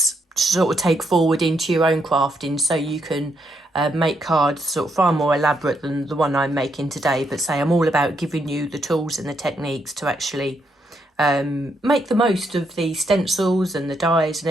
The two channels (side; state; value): both; normal; correlation 0.77